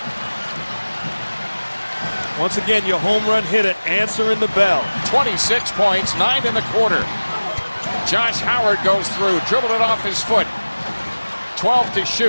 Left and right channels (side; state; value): both; inverted; correlation -1.00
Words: Once again, your home run hitter answering the bell. 26 points, 9 in the quarter. Josh Howard goes through, dribbled it off his foot. 12 to